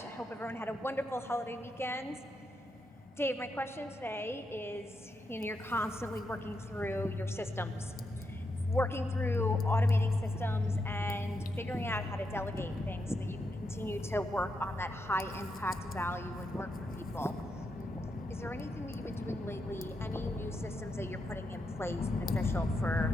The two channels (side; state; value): both; normal; correlation 0.83